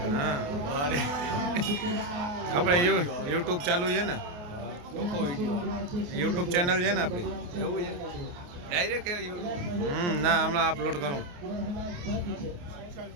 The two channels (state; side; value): late; left; 28 ms